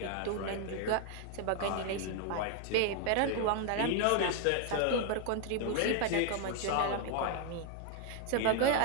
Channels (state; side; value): different; both; correlation 0.01